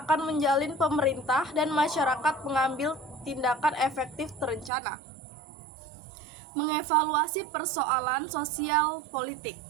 menjalin pemerintah dan masyarakat mengambil tindakan efektif terencana. Mengevaluasi persoalan sosial politik.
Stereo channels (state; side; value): drops out; left; at 4.7 s